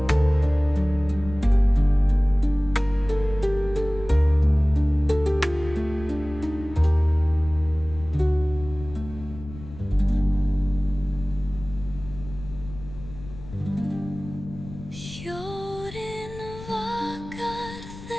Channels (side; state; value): left; noise; rumble, 15 dB below the sound